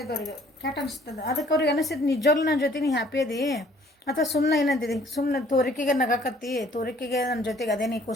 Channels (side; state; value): both; normal; correlation 0.58